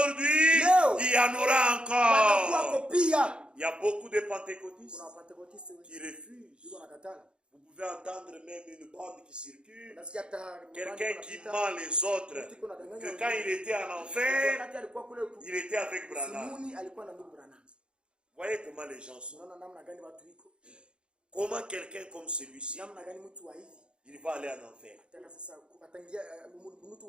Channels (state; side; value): late; left; 0.054 ms